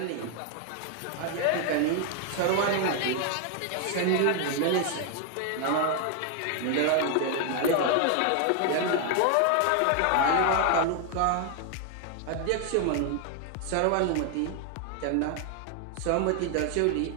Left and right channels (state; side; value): different; both; correlation 0.00